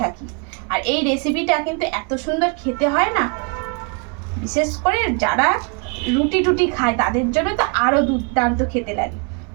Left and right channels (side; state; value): left; quieter; 36.1 dB